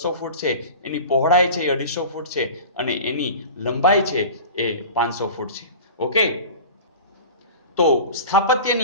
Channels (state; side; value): inverted; both; correlation -0.36